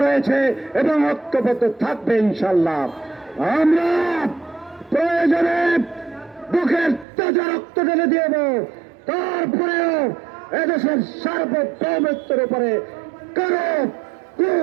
রয়েছে এবং ঐক্যবদ্ধ থাকবে ইনশাল্লাহ। আমরা প্রয়োজনে বুকের তাজা রক্ত ঢেলে দিব, তারপরেও এদেশের সার্বভৌমত্বের উপরে কারো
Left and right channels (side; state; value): left; drops out; at 7.1 s